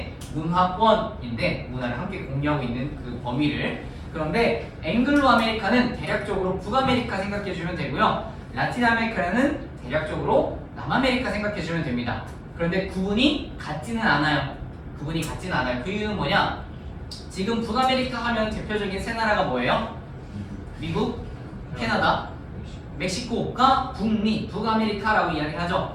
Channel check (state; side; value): identical; both; correlation 1.00